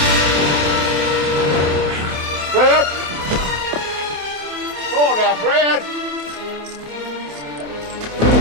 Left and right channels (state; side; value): late; left; 27 ms